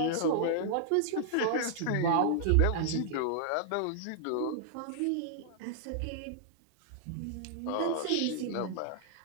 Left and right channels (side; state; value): both; different; correlation -0.01